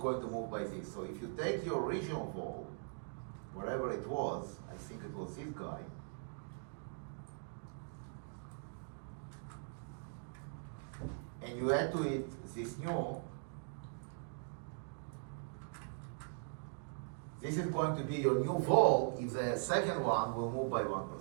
to move by this. So if you take your original vol, wherever it was, I think it was this guy, and you add to it this new, this is going to be your new vol if the second one will move by 1%.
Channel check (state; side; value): silent; left; digital silence